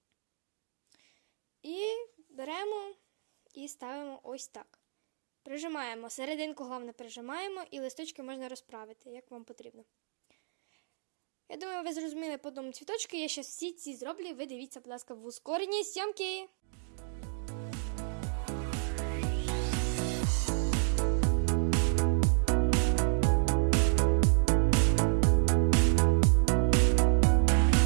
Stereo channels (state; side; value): silent; left; digital silence